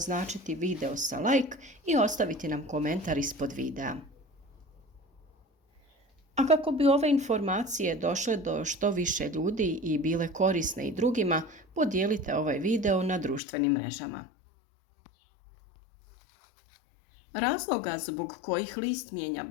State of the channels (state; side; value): drops out; right; at 13.4 s